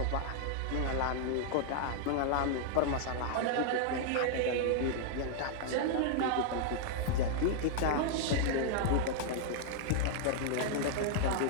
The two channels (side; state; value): both; different; correlation -0.01